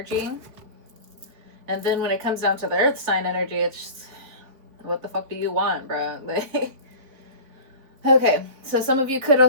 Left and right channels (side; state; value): left; late; 4.0 ms